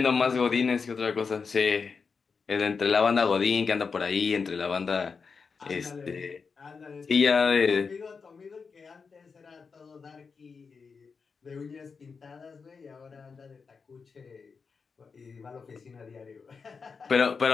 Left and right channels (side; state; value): right; quieter; 5.2 dB